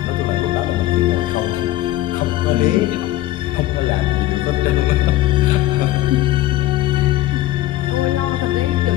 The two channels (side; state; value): right; quieter; 15.3 dB